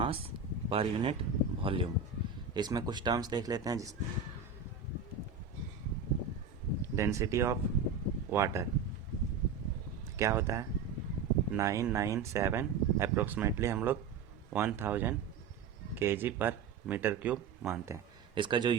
पर यूनिट वॉल्यूम। इसमें कुछ टर्म्स देख लेते हैं। जिस डेंसिटी ऑफ वाटर क्या होता है? 997 अप्रोक्सीमेटली हम लोग 1000 kg पर मीटर क्यूब मानते हैं। इसका जो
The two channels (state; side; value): quieter; left; 5.6 dB